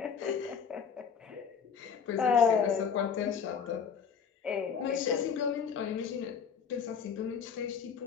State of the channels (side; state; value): right; quieter; 6.7 dB